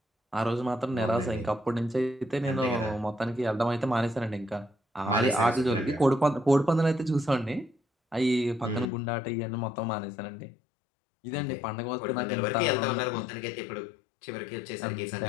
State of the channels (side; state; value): right; drops out; at 8.9 s